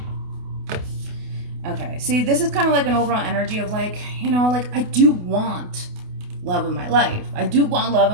Okay, see, this is kind of like an overall energy of like, like I do want love in my life. I do want love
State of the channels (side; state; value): left; late; 28 ms